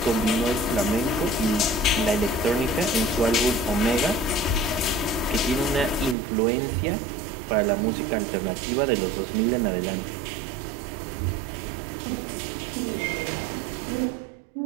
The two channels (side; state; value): left; drops out; at 6.2 s